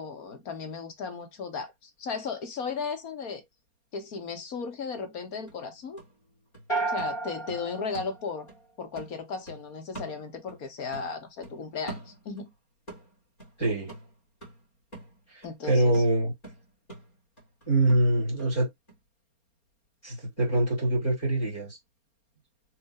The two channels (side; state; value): right; late; 4.3 ms